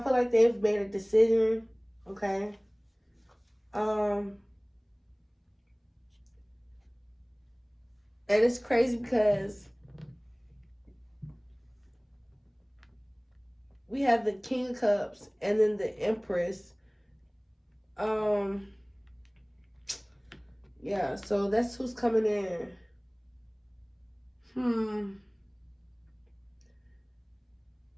feel like they've made a decision. Okay? And it's crazy because we have the King of Cups and then the Empress. Yeah, so that's who's coming in.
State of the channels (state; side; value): identical; both; correlation 1.00